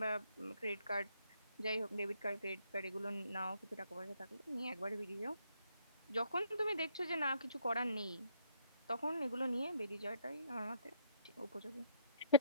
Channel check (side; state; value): both; inverted; correlation -0.70